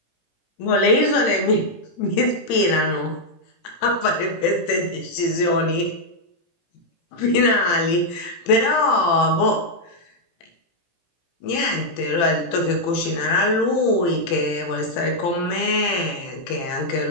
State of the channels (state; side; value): late; right; 18 ms